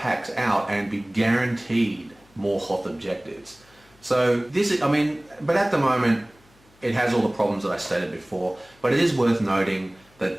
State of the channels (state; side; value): noise; left; hum, 30 dB below the sound